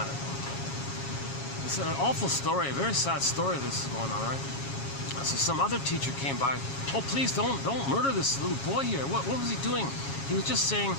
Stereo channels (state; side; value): late; right; 7.3 ms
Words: of thing. It's an awful story, a very sad story this is going on, right? So some other teacher came by. Oh, please don't murder this little boy here. What was he doing? He was just saying,